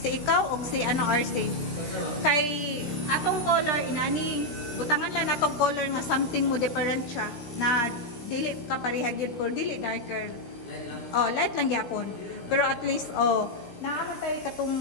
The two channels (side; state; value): right; late; 16 ms